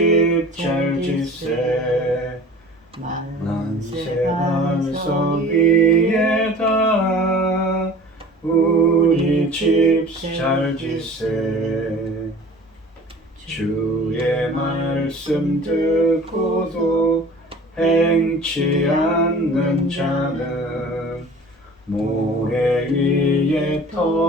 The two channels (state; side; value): normal; both; correlation 0.43